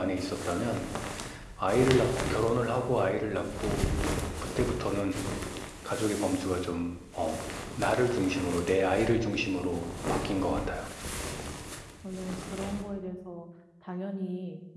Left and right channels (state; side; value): identical; both; correlation 1.00